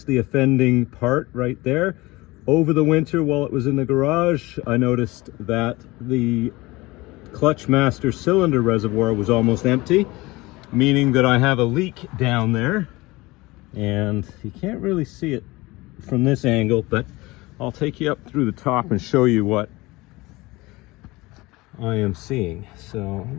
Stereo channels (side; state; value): right; quieter; 21.5 dB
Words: the offending part right there. Over the winter while it was in the garage, I noticed that the clutch master cylinder reservoir was almost empty, meaning that I have a leak down there. And you can't really see it from this angle, but I'll take you up through the top and show you what I am seeing. So let